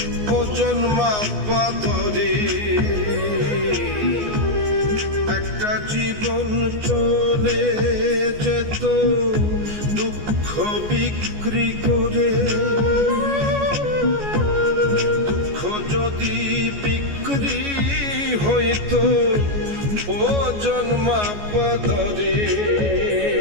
ওজন মাপা ধরে একটা জীবন চলে যেত দুঃখ বিক্রি করে। দুঃখ যদি বিক্রি হইতো ওজন মাপা ধরে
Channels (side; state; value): left; late; 14 ms